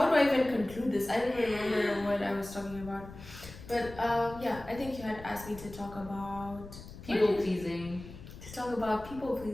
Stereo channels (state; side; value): noise; left; rumble, 15 dB below the sound